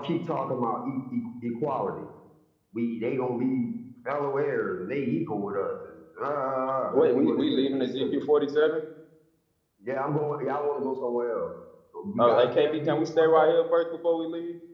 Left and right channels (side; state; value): both; identical; correlation 1.00